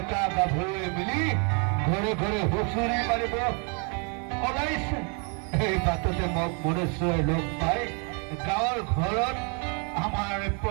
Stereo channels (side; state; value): left; quieter; 37.1 dB